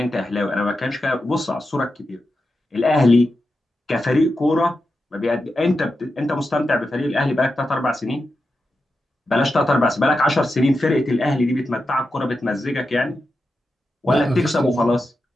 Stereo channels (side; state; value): both; normal; correlation 0.89